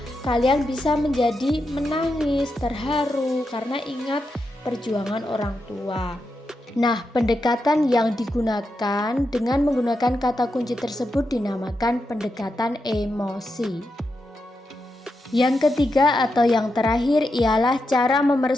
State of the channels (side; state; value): both; normal; correlation 0.86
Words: kalian bisa menjadi menangis, terharu karena ingat perjuangan orang tua. Nah, pendekatan yang digunakan dengan menggunakan kata kunci tersebut dinamakan pendekatan emosi. Yang ketiga atau yang terakhir ialah cara